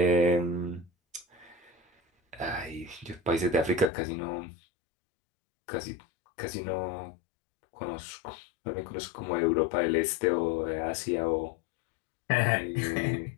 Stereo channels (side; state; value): right; drops out; at 3.9 s